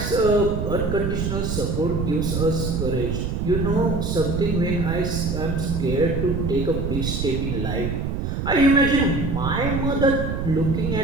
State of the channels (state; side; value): noise; right; rumble, 2 dB below the sound